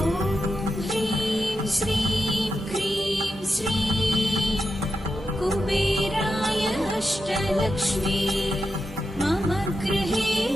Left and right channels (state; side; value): normal; both; correlation 0.88